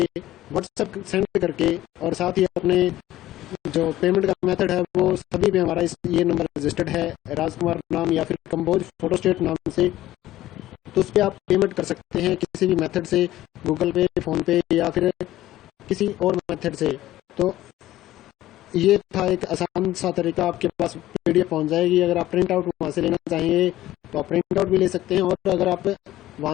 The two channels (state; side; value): quieter; right; 14.8 dB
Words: व्हाट्सएप सेंड करके और साथ ही अपने जो पेमेंट का मेथड है वो सभी पे हमारा ये नंबर रजिस्टर्ड है, राजकुमार नाम या फिर कंबोज फोटोस्टेट नाम से। तो उस पर आप पेमेंट कर सकते हैं किसी भी मेथड से, गूगल पे, फ़ोन पे या फिर किसी और मेथड से। तो ये था एक आसान सा तरीका, आपके पास पीडीएफ पहुंच जाएगी। अगर आप प्रिंट आउट वहाँ से लेना चाहेंगे तो आप प्रिंट आउट भी ले सकते हैं, और अगर आप